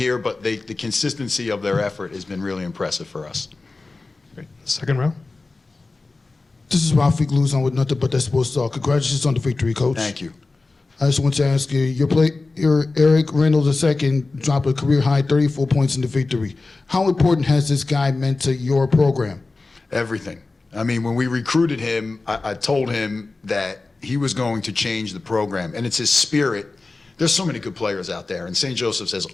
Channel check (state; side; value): quieter; right; 3.5 dB